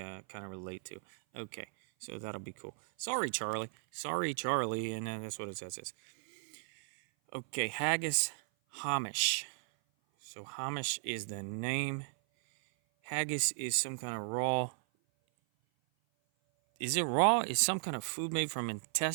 kind of relate to. Okay, so that'll be cool. Sorry, Charlie. And that's what it says. Okay, Haggis Hamish. So Hamish is the name. Haggis is some kind of raw. Is it raw? Is some kind of food made from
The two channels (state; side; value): silent; left; 54 dB below the other